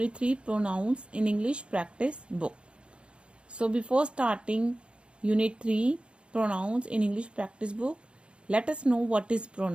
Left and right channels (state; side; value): late; left; 0.056 ms